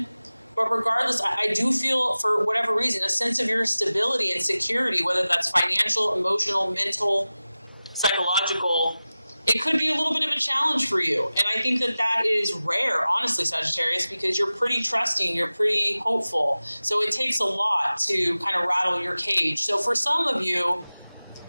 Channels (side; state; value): both; inverted; correlation -0.96